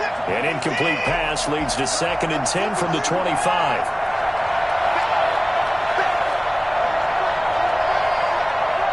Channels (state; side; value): identical; both; correlation 1.00